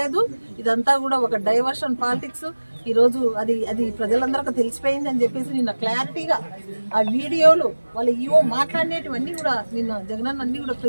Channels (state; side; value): inverted; both; correlation -1.00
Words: ఇదంతా కూడా ఒక డైవర్షన్ పాలిటిక్స్. ఈరోజు అది ప్రజలందరికీ తెలిసిపోయింది అని చెప్పేసి నిన్న క్లారిటీగా ఆ వీడియోలు వాళ్ళు ఈవో మాట్లాడినటువన్నీ కూడా నిన్న జగనన్న అన్ని కూడా